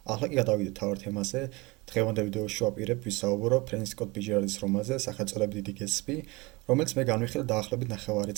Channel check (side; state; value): left; quieter; 23.8 dB